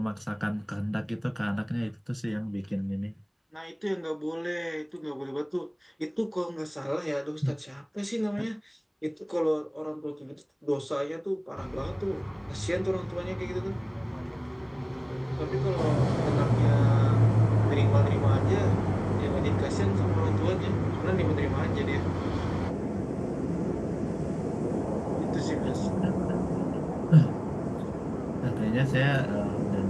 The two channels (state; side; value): identical; both; correlation 1.00